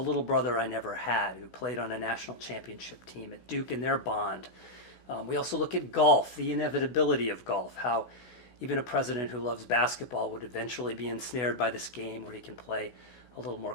brother I never had, who played on a national championship team at Duke in their bond. We also look at golf, the inevitability of golf, how even a president who loves basketball would eventually be ensnared by this game where he can play a little more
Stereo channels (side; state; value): right; late; 16 ms